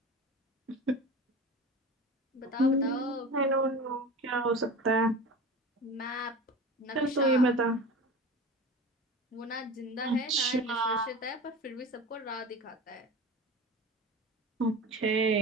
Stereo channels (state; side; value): normal; both; correlation 0.32